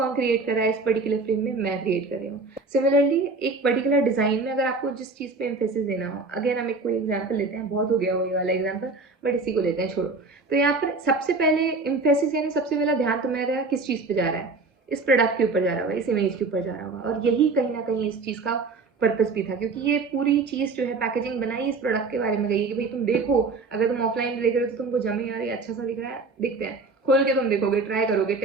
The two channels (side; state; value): left; quieter; 3.9 dB